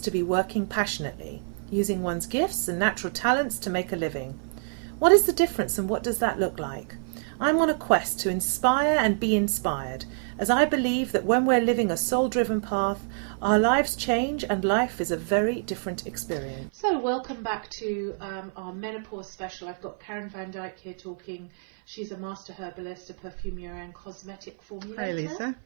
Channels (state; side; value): silent; left; 56 dB below the other